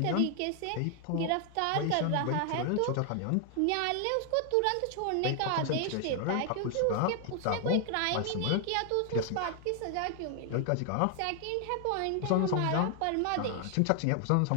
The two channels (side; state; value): both; different; correlation 0.00